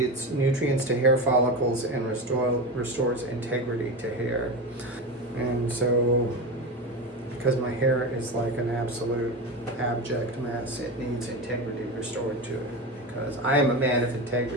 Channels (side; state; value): both; normal; correlation 0.22